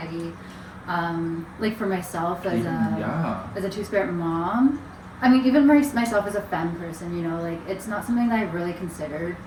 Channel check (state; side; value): identical; both; correlation 1.00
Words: Like, for myself as a two-spirit mom, I mean, even myself as a femme person, you know, like, it's not something that I really considered